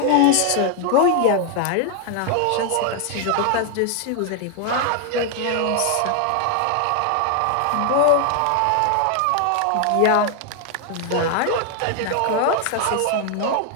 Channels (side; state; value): both; different; correlation 0.00